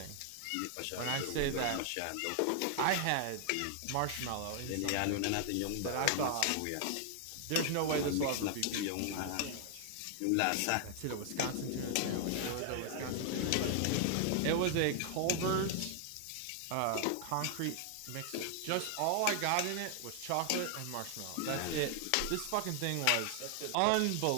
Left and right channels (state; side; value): different; both; correlation 0.00